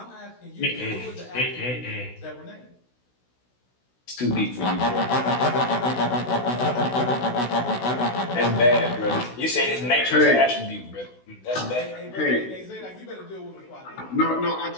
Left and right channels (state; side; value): late; right; 16 ms